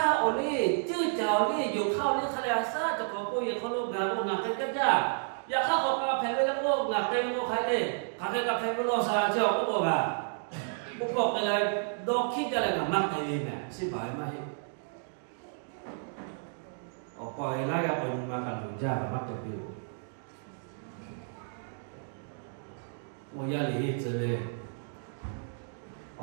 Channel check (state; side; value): silent; left; digital silence